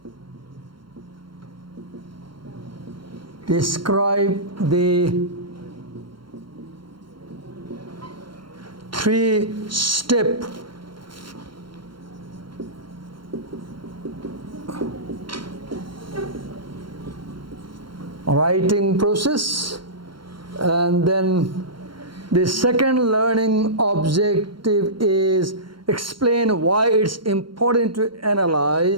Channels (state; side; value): late; left; 0.73 ms